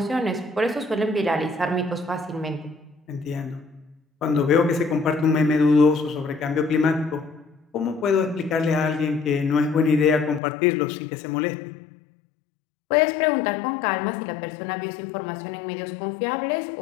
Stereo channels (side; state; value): right; drops out; at 10.4 s